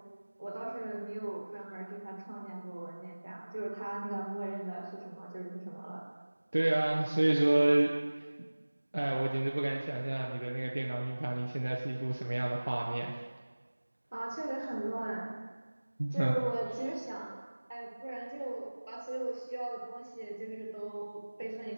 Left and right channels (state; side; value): inverted; both; correlation -1.00